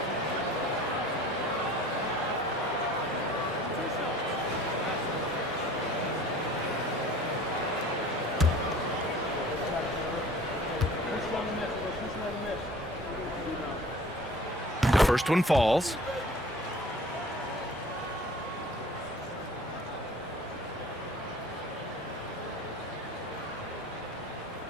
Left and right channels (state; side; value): normal; both; correlation 0.47